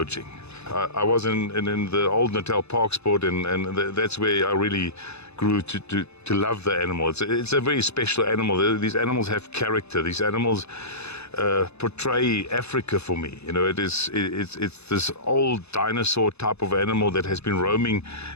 I was in the old Natal Park Sport, and that's where I really grew to love the animal. It's a very special animal. These animals have character. These animals portray Africa for me. It's this old dinosaur type of animal that has been roaming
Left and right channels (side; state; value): right; late; 0.80 ms